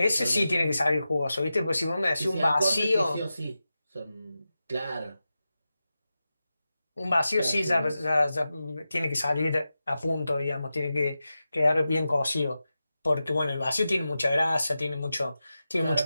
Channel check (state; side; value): inverted; both; correlation -0.92